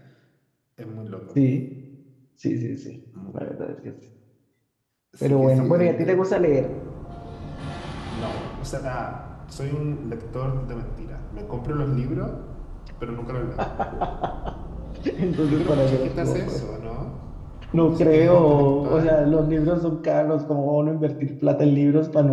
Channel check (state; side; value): identical; both; correlation 1.00